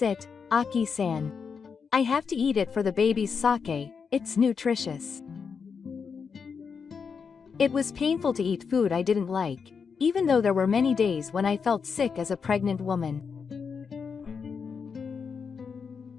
it, Aki-san. I have to eat it for the baby's sake, it's nutritious. It was painful to eat food I didn't like, even though there were many days when I felt sick as a pregnant woman.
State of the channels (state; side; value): quieter; right; 5.9 dB